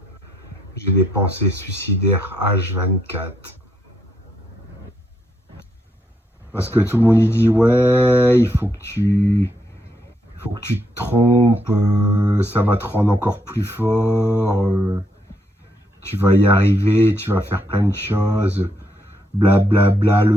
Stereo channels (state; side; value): normal; both; correlation 0.77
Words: j'ai des pensées suicidaires H24. Parce que tout le monde y dit ouais, il faut que tu te trompes, ça va te rendre encore plus fort, tu vas y arriver, tu vas faire plein de choses, blablabla, bla, bla,